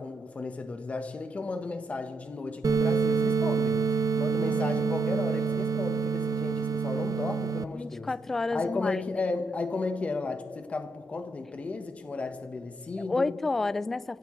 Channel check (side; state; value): both; normal; correlation 0.79